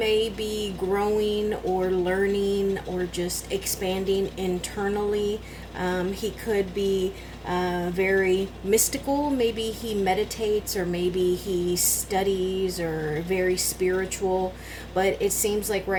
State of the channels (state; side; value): identical; both; correlation 1.00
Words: be growing or learning or just expanding internally. He could be very mystical. Maybe he meditates, or maybe he studies, or very spiritual. But it seems like